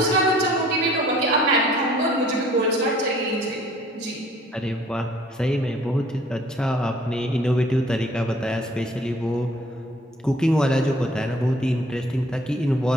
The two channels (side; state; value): both; normal; correlation 0.56